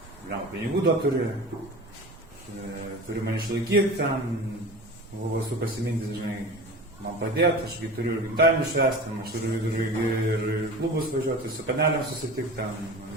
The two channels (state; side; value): noise; right; rumble, 24 dB below the sound